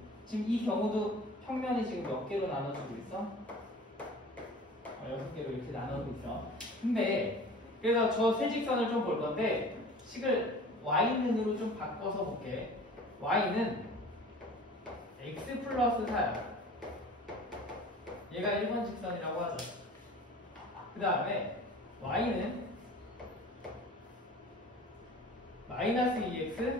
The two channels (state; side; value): normal; both; correlation 0.42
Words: 지금 이 경우도 평면이 지금 몇 개로 나눠지고 있어? 6개로 이렇게 나누고 있어. 근데 그래서 저 세 직선을 좀 볼 건데 식을 y는으로 좀 바꿔서 볼게. y는 x 플러스 4야. 얘가 1번 직선이라고 하죠. 그 다음에 y는 마이너스